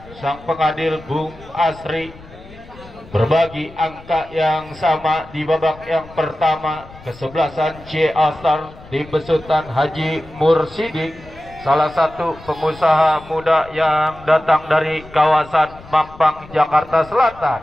Sang pengadil Bung Asri berbagi angka yang sama di babak yang pertama. Kesebelasan C Astar di besutan Haji Mursidik, salah satu pengusaha muda yang datang dari kawasan Mampang, Jakarta Selatan.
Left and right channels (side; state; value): left; noise; rumble, 20 dB below the sound